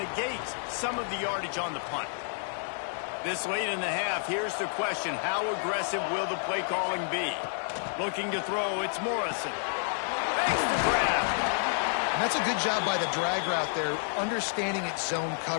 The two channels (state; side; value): silent; right; digital silence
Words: some of the yardage on the punt. This late in the half, here's the question. How aggressive will the play calling be? Looking to throw, it's Morrison. Makes the grab. And that's a good job by the drag route there, understanding its zone